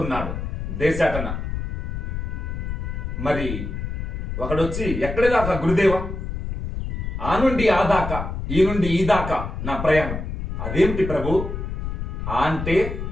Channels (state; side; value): noise; left; rumble, 5 dB below the sound